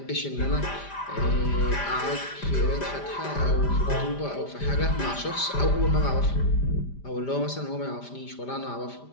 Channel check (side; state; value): right; late; 5.0 ms